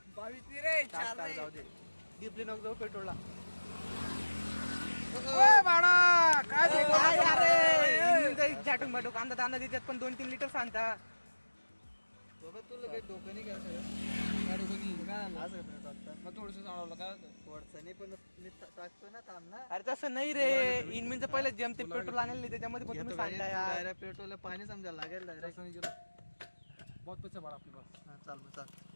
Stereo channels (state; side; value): inverted; both; correlation -1.00